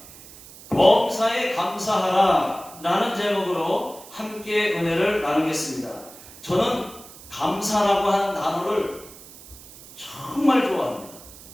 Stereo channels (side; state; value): right; noise; hiss, 19 dB below the sound